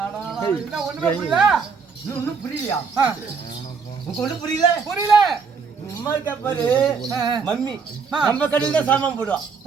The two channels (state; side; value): quieter; left; 5.4 dB